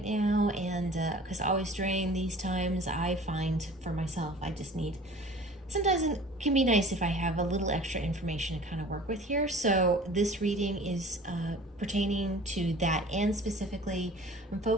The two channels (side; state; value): both; normal; correlation 0.45